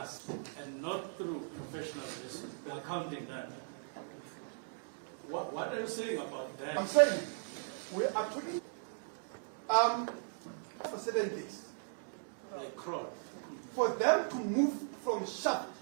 and not through professional risk, we are counting that. What are you saying about that? I'm saying we are talking for 7 days. They crawl. For them to move from shaft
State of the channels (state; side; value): silent; left; digital silence